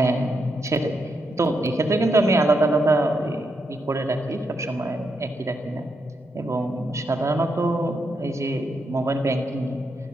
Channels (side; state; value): both; normal; correlation 0.81